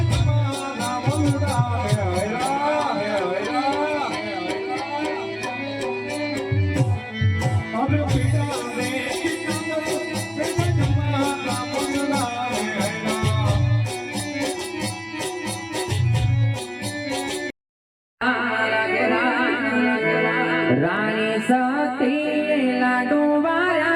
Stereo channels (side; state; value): both; identical; correlation 1.00